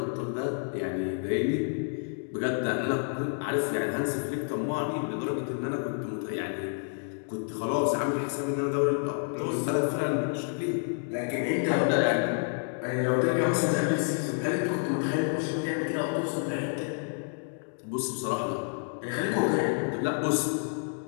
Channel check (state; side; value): silent; right; 58 dB below the other